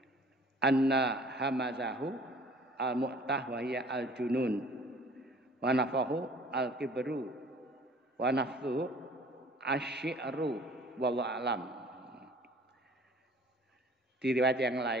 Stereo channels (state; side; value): normal; both; correlation 0.51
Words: anna hamazahu al-mu'tah wa hiya al-junun wa nafahu al-kibru wa nafthuhu asy-syi'ru wallahu alam. Di riwayat yang